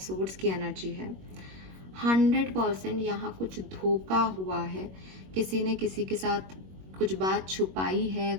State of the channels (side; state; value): left; late; 21 ms